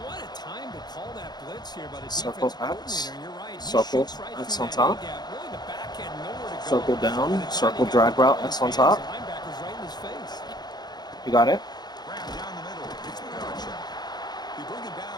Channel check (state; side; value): late; right; 0.20 ms